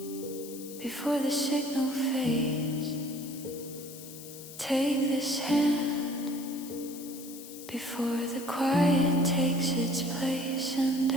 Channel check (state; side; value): noise; left; hiss, 14 dB below the sound